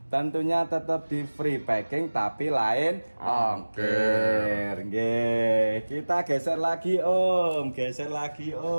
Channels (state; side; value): inverted; both; correlation -1.00